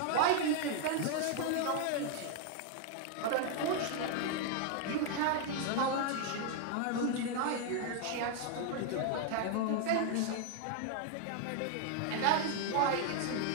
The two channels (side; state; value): both; different; correlation 0.00